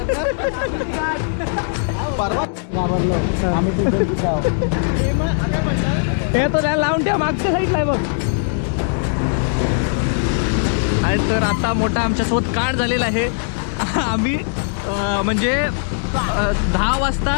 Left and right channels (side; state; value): right; silent; digital silence